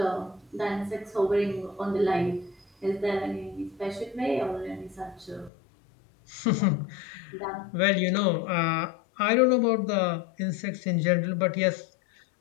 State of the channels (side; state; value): right; drops out; at 5.5 s